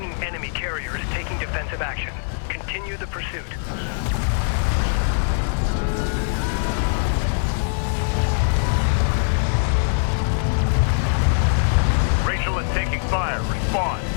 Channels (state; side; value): silent; right; 64 dB below the other